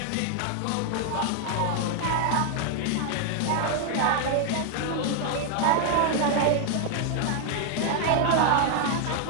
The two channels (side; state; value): both; different; correlation 0.00